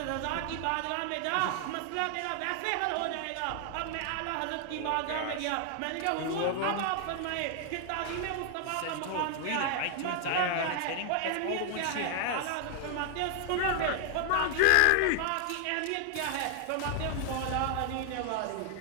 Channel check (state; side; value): different; both; correlation 0.00